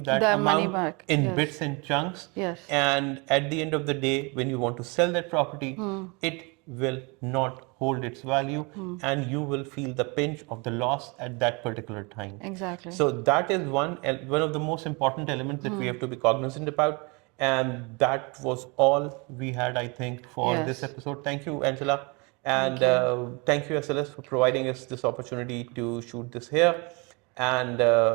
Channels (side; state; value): left; quieter; 29.6 dB